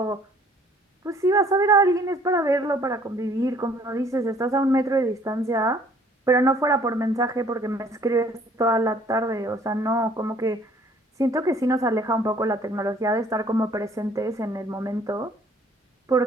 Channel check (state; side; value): normal; both; correlation 0.58